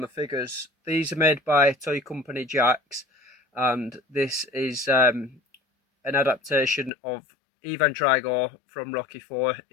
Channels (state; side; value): drops out; right; at 6.9 s